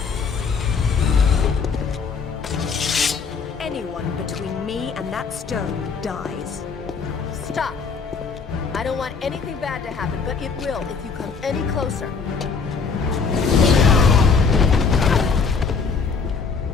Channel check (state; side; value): quieter; right; 5.3 dB